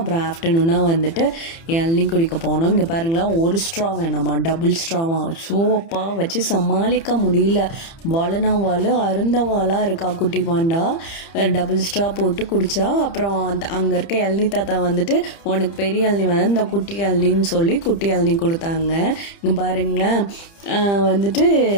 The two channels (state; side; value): late; right; 30 ms